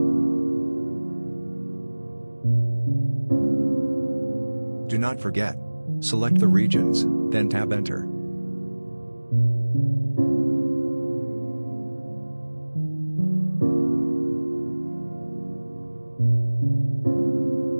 Do not forget. Select the regions, then tab Enter.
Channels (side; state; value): both; inverted; correlation -1.00